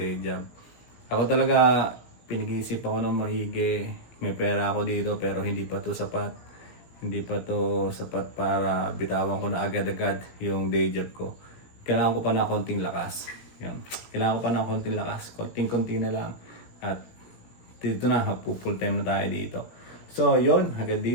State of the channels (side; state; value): right; late; 18 ms